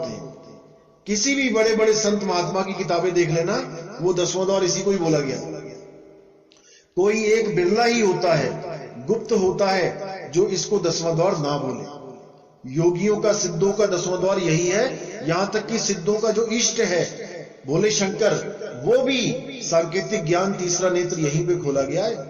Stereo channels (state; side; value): identical; both; correlation 1.00